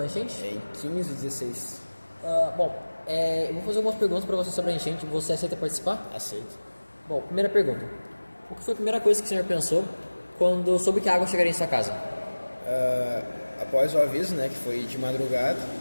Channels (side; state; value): both; inverted; correlation -1.00